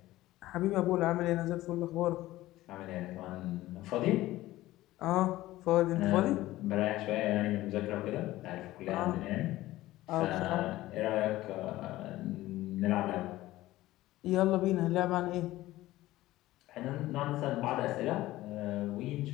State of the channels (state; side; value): quieter; right; 16.5 dB